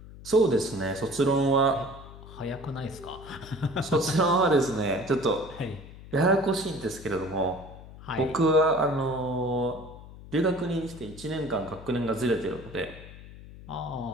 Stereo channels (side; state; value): left; noise; hum, 16 dB below the sound